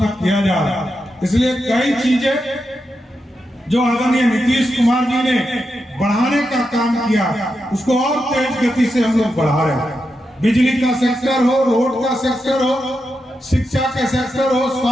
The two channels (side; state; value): both; normal; correlation 0.87